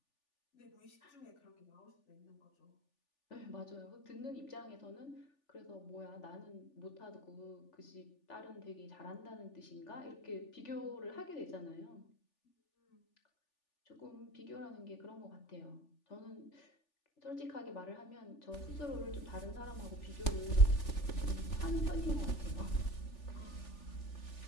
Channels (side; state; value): right; late; 3.4 ms